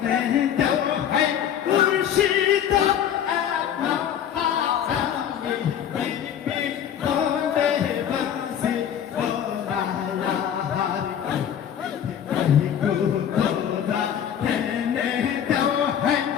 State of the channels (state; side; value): quieter; right; 9.3 dB